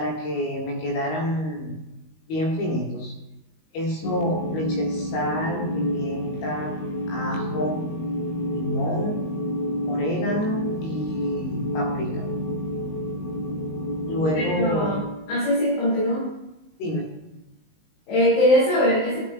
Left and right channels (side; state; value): right; late; 19 ms